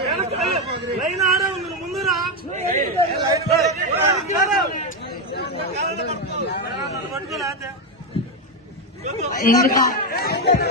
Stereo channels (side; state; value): both; normal; correlation 0.08